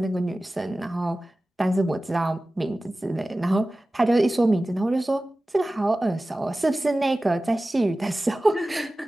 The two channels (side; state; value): both; normal; correlation 0.96